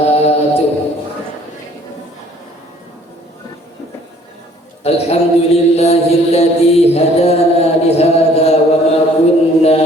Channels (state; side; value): normal; both; correlation 0.57